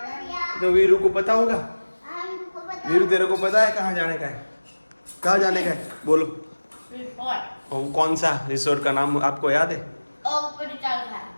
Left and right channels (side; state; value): both; inverted; correlation -1.00